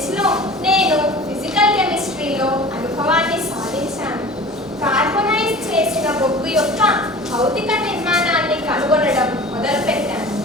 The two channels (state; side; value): normal; both; correlation 0.40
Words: లో నేను ఫిజికల్ కెమిస్ట్రీలో అనుభవాన్ని సాధించాను. కార్బనైజ్ చేసిన బొగ్గు యొక్క భౌతిక నిర్మాణాన్ని కనుగొనడం మొదలుపెట్టాను.